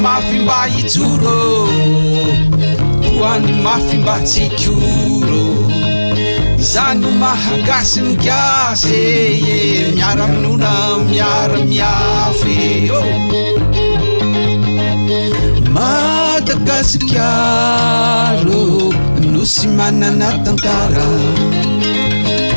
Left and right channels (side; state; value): both; inverted; correlation -1.00